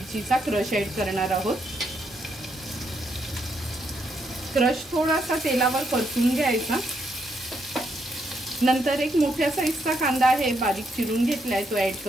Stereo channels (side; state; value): both; normal; correlation 0.77